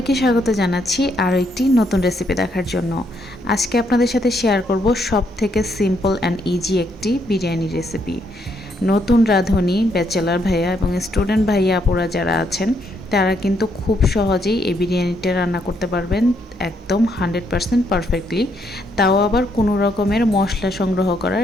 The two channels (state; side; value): normal; both; correlation 0.74